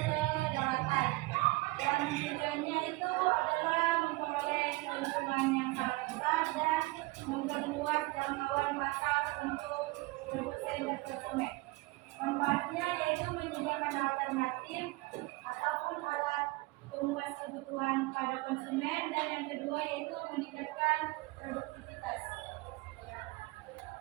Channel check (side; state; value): left; quieter; 22.3 dB